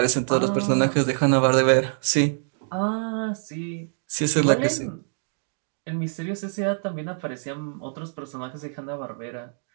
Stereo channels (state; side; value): silent; left; digital silence